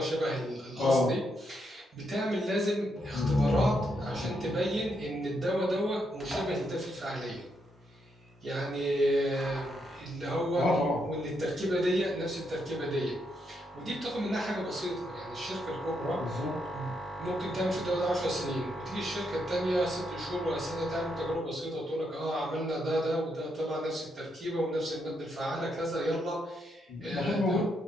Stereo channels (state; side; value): normal; both; correlation 0.79